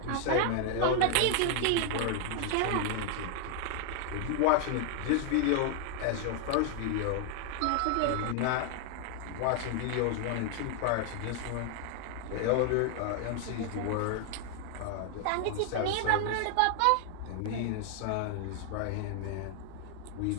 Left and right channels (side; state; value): both; different; correlation 0.00